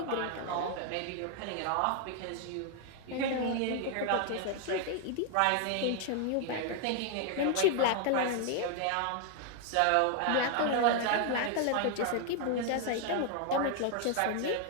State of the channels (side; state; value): both; different; correlation 0.00